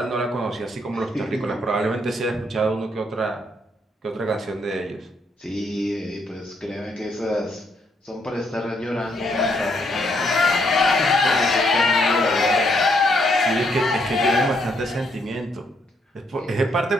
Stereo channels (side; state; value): both; normal; correlation 0.73